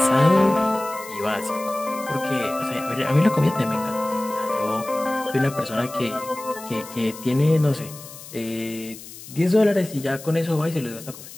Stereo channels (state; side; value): noise; left; hiss, 15 dB below the sound